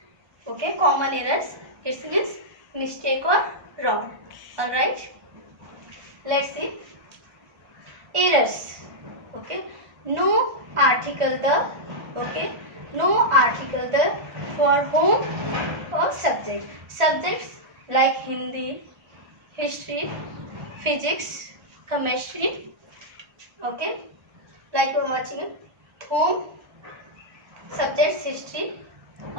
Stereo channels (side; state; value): left; late; 1.4 ms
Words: Okay, common errors. It means mistake or wrong. Alright. Let's see. Errors. Okay, no article the. Okay, no article the for whom or subject. Subjects like Hindi, history, physics, chemistry. Okay, like we're watching it. Home, subjects, history.